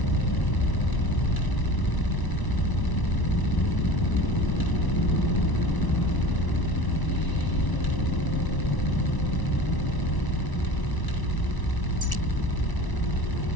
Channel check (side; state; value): right; late; 1.0 ms